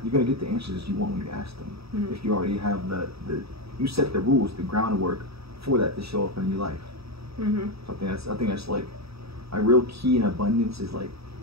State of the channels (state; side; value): late; left; 0.77 ms